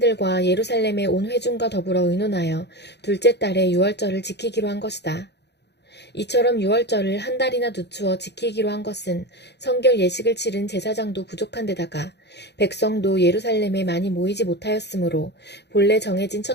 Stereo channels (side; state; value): right; late; 0.49 ms